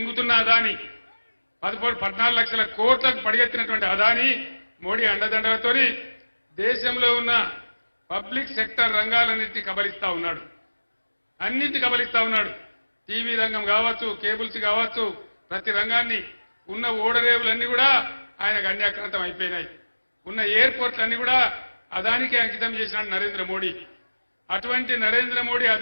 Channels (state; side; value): inverted; both; correlation -1.00